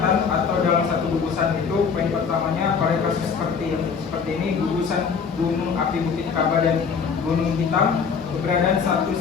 atau dalam satu gugusan itu, poin pertamanya pada kasus seperti ini gugusan gunung api Bukit Kaba dan Gunung Hitam, keberadaan satu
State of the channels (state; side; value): quieter; right; 6.1 dB